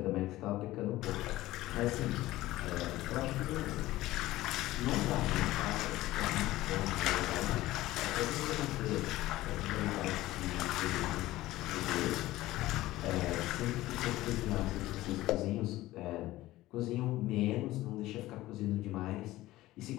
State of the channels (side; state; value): right; quieter; 16.8 dB